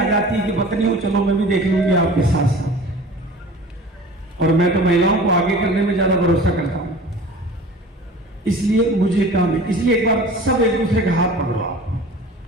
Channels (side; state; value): both; normal; correlation 0.41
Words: जाती है कि पत्नी हो, चलो मैं भी देख लूंगी आपके साथ साथ। और मैं तो महिलाओं को आगे करने में ज्यादा भरोसा करता हूं, इसलिए मुझे काम है। इसलिए एक बार सब एक दूसरे का हाथ पकड़ो आप।